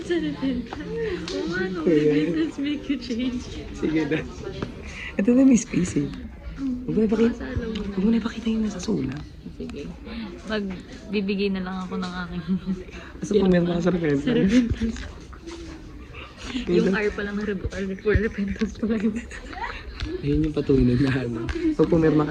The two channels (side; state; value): both; identical; correlation 1.00